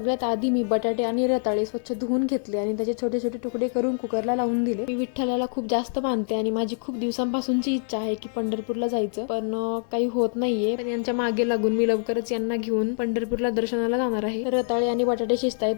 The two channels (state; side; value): silent; right; 62 dB below the other